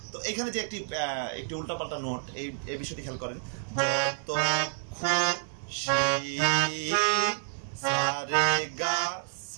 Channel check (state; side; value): silent; left; 58 dB below the other